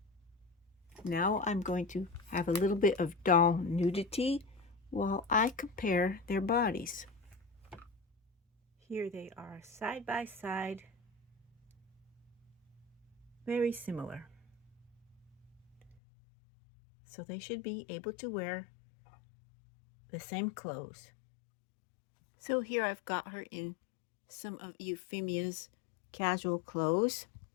Now I'm going to have a little bit of doll nudity while I compare their bodies. Here they are side by side, very similar. So they should be able to wear the same clothes. So here I've got her in some of Euphemia's casual clothes,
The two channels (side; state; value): right; drops out; at 16.0 s